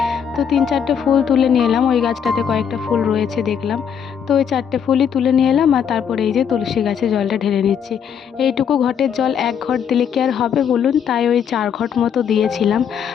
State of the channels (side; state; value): right; quieter; 7.8 dB